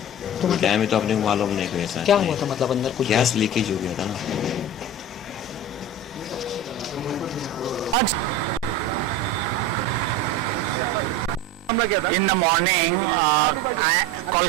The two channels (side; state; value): both; normal; correlation 0.30